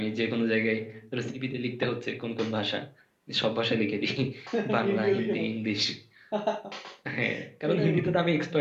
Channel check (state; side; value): identical; both; correlation 1.00